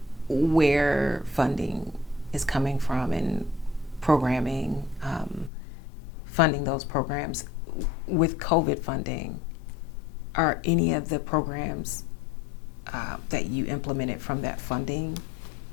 where funding is coming from and programming, funding those programs. With COVID funding, are any of the programs that you implemented from that funding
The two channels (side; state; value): right; drops out; at 5.5 s